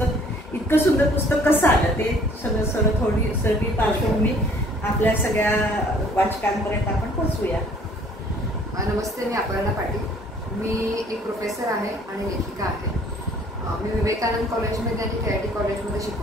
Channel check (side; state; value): both; normal; correlation 0.57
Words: इतकं सुंदर पुस्तक कसं आलं ते सगळं थोडी सगळी पार्श्वभूमी आपल्या सगळ्या वाचकांपर्यंत आपण पोहोचूया. नमस्ते, मी अपर्णा पाटील. मी एक प्रोफेसर आहे आणि लेखिका आहे. मी विवेकानंद कॉलेजमध्ये आणि KIT कॉलेजमध्ये